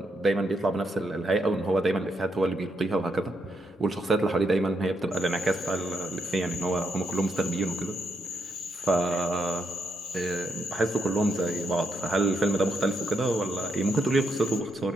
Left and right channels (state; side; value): normal; both; correlation 0.79